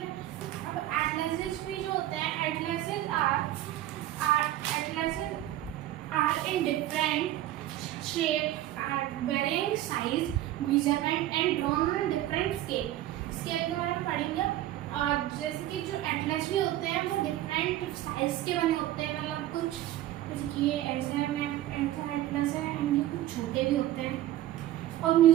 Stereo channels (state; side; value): quieter; left; 13.9 dB